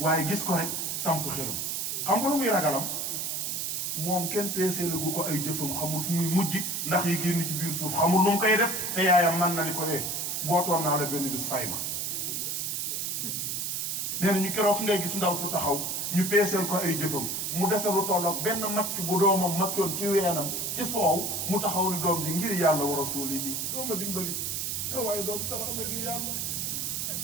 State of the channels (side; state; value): right; noise; hiss, 2 dB below the sound